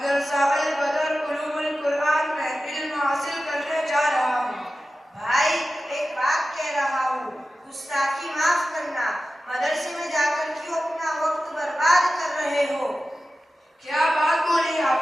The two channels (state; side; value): normal; both; correlation 0.94